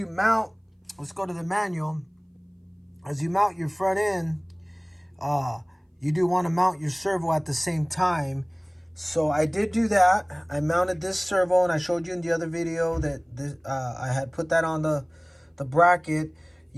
mount, let's go to the manual. As you mount your front end, you do want to mount your servo at the same time. So I did do that. I mounted this servo, and I showed you in the other video that I had put that on the bracket.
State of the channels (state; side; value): identical; both; correlation 1.00